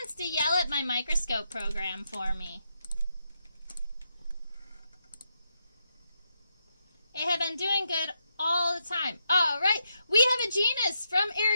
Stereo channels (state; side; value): inverted; both; correlation -0.82